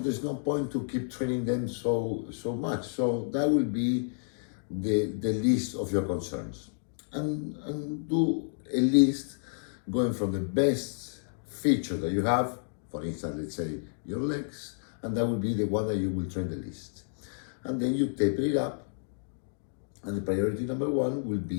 point to keep training them so much. So that will be the list of your concerns, and do a list going from the best feature that you have. For instance, let's say your legs, and that will be the one that you will train the least. And then you taper it up, and the priority number one will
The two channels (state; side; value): silent; right; digital silence